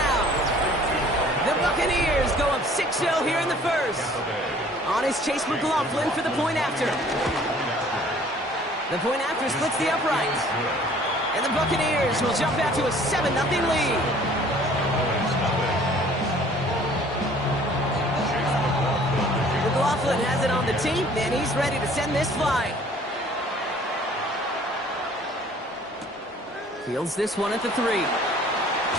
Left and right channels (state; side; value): normal; both; correlation 0.54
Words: The Buccaneers go up 6-0 here in the first. On is Chase McLaughlin for the point after. The point after splits the uprights. And the Buccaneers will jump out to a 7-0 lead. McLaughlin has it on the team, and he's ready to send this flight. Fields this one at the 3.